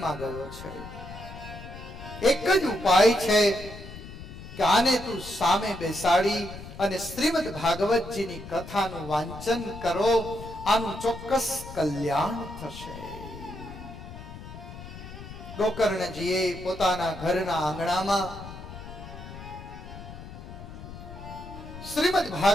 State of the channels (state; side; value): noise; left; rumble, 13 dB below the sound